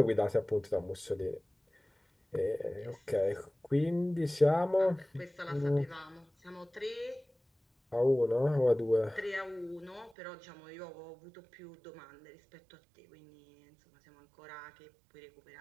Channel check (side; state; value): left; drops out; at 10.2 s